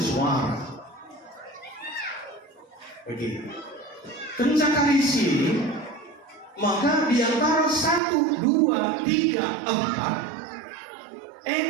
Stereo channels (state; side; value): drops out; left; at 8.0 s